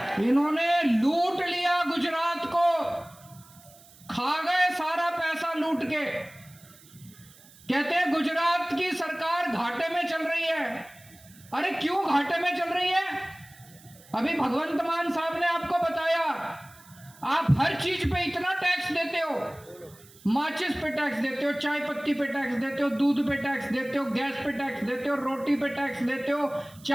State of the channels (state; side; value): noise; right; hiss, 24 dB below the sound